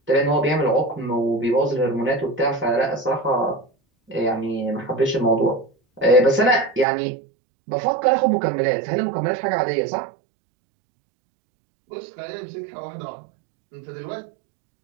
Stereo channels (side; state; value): left; drops out; at 6.9 s